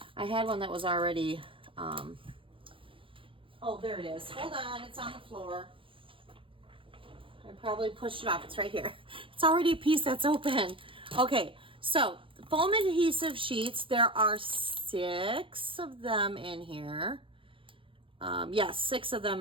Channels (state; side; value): late; left; 0.25 ms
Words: I had one that was already, oh, there it is. Hold on, it's on the floor. I probably pushed it off. It's right here. It's already a piece that's open. Okay, so foam adhesive sheets, there are 6 of them in here. Yes, 6 of